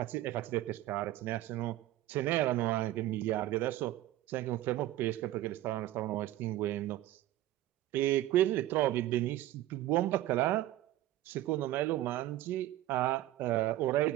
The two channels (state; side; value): quieter; left; 14.5 dB